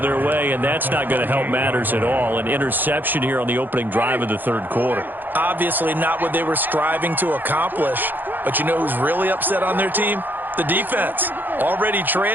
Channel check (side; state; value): left; late; 0.088 ms